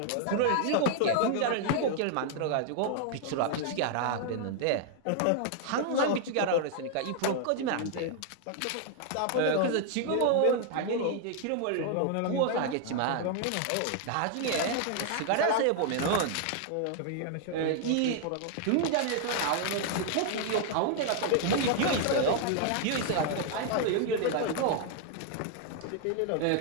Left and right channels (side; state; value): both; different; correlation 0.00